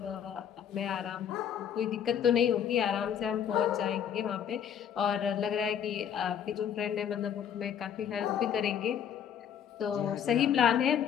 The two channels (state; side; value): quieter; right; 8.7 dB